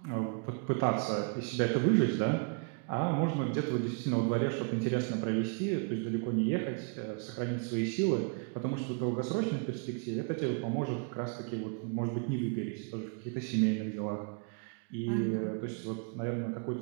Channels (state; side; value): quieter; left; 35.5 dB